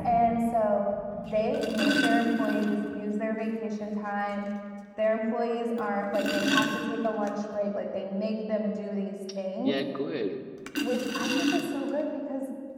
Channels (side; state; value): both; identical; correlation 1.00